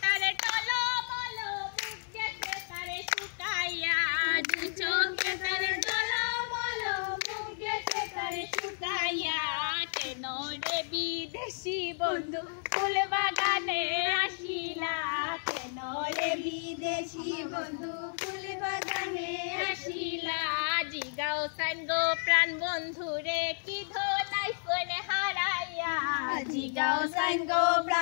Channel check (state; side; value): silent; right; digital silence